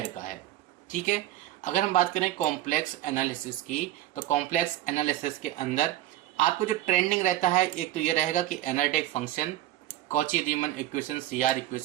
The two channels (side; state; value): left; quieter; 14.1 dB